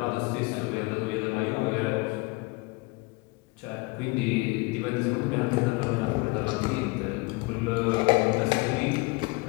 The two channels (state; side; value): quieter; right; 25.4 dB